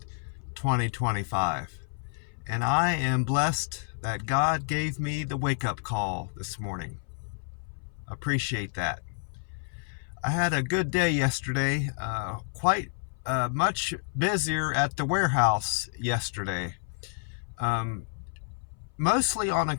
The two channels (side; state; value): right; silent; 58 dB below the other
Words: 2025. And I am blessed that God gave me the wake-up call this morning. Appreciate that. I had a good day yesterday, quite much busier at the warehouse yesterday. Mostly on